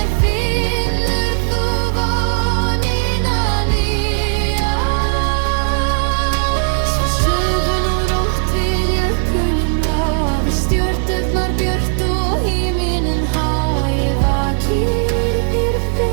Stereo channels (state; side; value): silent; left; 68 dB below the other